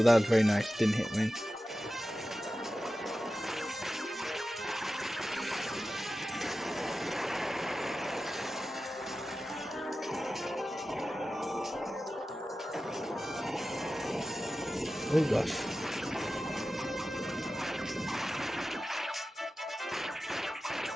that was very nice. Didn't hit me. Oh gosh.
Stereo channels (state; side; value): normal; both; correlation 0.94